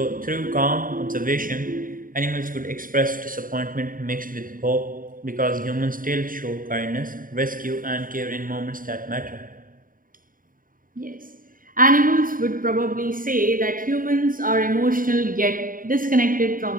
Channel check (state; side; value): late; left; 0.40 ms